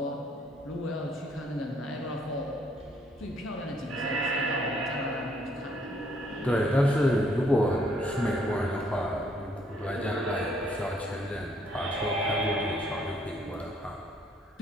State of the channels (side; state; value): both; normal; correlation 0.67